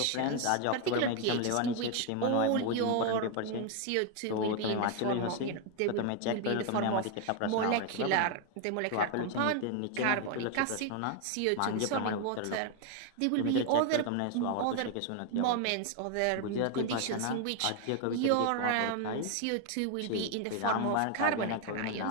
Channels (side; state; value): both; different; correlation 0.01